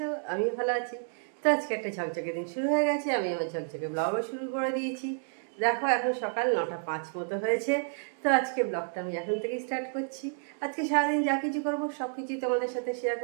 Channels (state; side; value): silent; left; digital silence